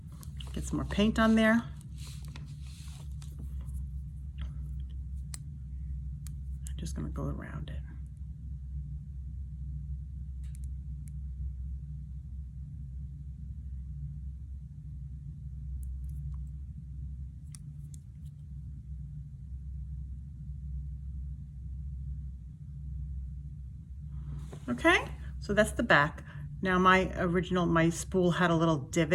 Get some more paint on there. I'm just going to go around it. Okay, so that's the back. Now my spool had a little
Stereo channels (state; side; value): identical; both; correlation 1.00